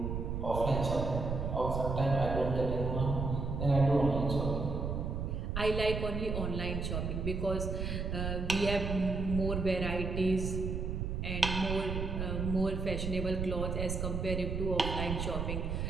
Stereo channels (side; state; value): right; noise; rumble, 2 dB below the sound